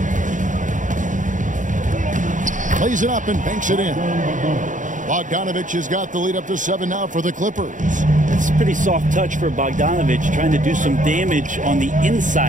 Plays it up and banks it in. Bogdanovich has got the lead up to 7 now for the Clippers. It's a pretty soft touch for Bogdanovich, trying to do some damage on the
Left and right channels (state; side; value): late; left; 0.37 ms